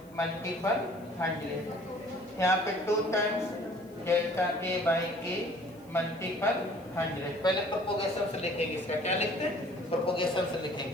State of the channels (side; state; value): left; noise; hiss, 29 dB below the sound